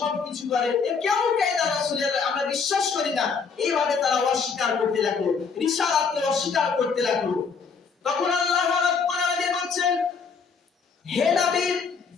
করে, এ কেমন কায়দা রাসূলের? আমরা বিশ্বাস করি না। এইভাবে তারা অস্বীকার করতে লাগলো, রিসালাতকে অস্বীকার করতে লাগলো। তখন আল্লাহ রাব্বুল আলামিন বলছেন, হে নবী,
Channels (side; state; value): right; quieter; 5.5 dB